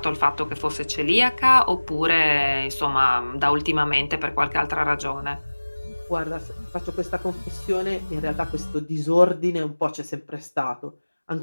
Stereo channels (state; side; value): inverted; both; correlation -1.00